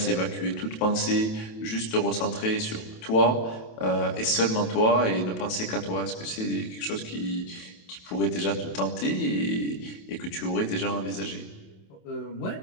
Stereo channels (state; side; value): late; right; 27 ms